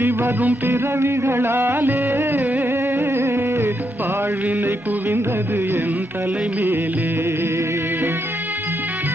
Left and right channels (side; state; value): both; normal; correlation 0.80